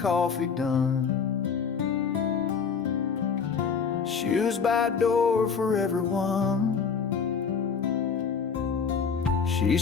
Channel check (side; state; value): right; quieter; 6.0 dB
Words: done, shoes by door for everyone. She